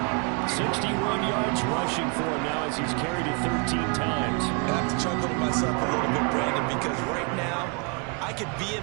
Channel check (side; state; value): left; quieter; 33.8 dB